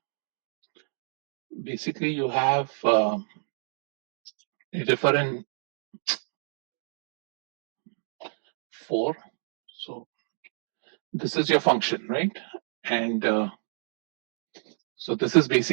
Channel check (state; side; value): silent; left; 58 dB below the other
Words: a differ in 4. So this is your function, right? And so this is